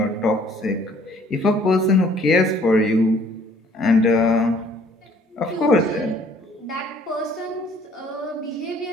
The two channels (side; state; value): both; normal; correlation 0.58